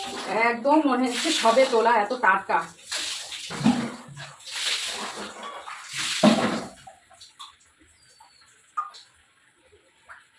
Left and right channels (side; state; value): both; identical; correlation 1.00